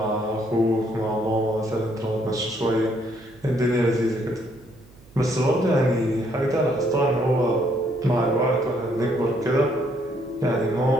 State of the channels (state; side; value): noise; right; hum, 25 dB below the sound